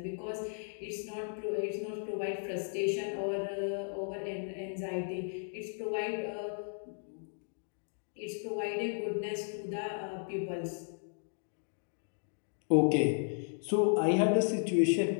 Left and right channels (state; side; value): silent; right; digital silence